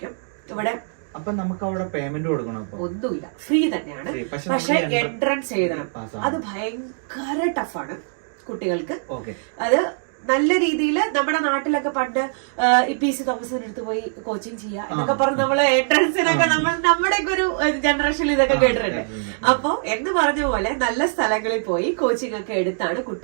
ഇവിടെ. അപ്പൊ നമുക്ക് അവിടെ പേയ്മെന്റ് കൊടുക്കണം? ഒന്നുമില്ല, ഫ്രീ തന്നെയാണ്. പക്ഷെ എൻട്രൻസ് എഴുതണം. അത് ഭയങ്കര ടഫാണ് കുട്ടികൾക്ക്. അത് നല്ല രീതിയിൽ നമ്മുടെ നാട്ടിലൊക്കെ പണ്ട് PC തോമസിന്റെ അടുത്ത് പോയി കോച്ചിങ് ചെയ്യുക എന്നൊക്കെ പറഞ്ഞ് നമ്മള് എൻട്രൻസിനൊക്കെ നമ്മുടെ ഒരു ജനറേഷനിൽ ഇതൊക്കെ കേട്ടിട്ടുണ്ട്. അപ്പൊ എന്ന് പറഞ്ഞ പോലെ നല്ല സ്ഥലങ്ങളിൽ പോയി കോച്ചിങ് ഒക്കെ എടുത്താണ്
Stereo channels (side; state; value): left; silent; digital silence